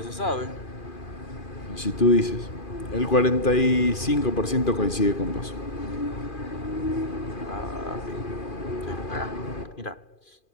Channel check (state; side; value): late; right; 2.4 ms